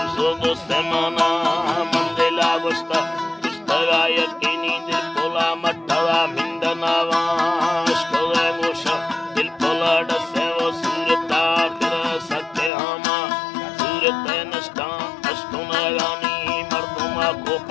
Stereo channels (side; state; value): right; drops out; at 12.7 s